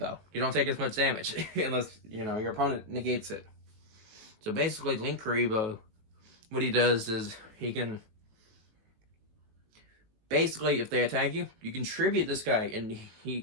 You don't take as much damage unless, you know, your opponent negates it. So basically, Link Kuribo, what he does is he can... Basically, if they attack you, you can tribute this guy, and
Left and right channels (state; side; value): late; left; 19 ms